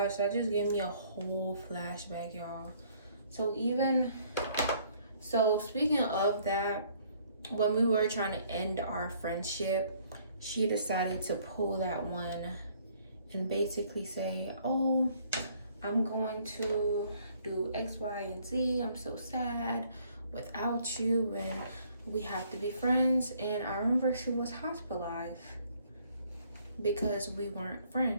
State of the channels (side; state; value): both; inverted; correlation -0.62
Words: that just gave me a whole flashback, y'all. So speaking of that, when we were trying to end our friendship, she decided to pull that one and basically say, oh, I'm going to do X, Y, and Z. I'm so sad without you and we have to be friends. And I remember she was hospitalized because we weren't